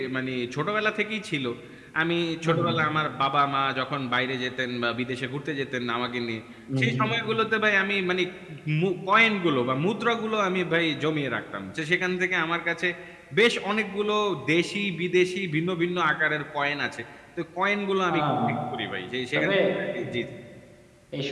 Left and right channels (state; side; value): identical; both; correlation 1.00